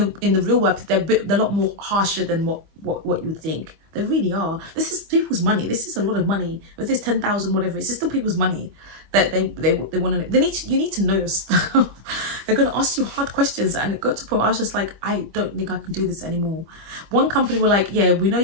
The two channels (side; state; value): left; late; 25 ms